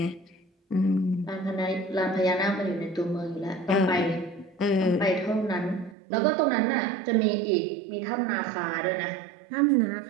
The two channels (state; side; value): drops out; left; at 6.0 s